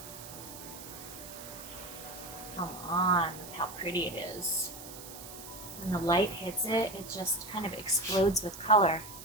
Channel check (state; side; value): noise; right; hiss, 13 dB below the sound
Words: Come on, look how pretty it is. When the light hits it, it just kind of explodes with color.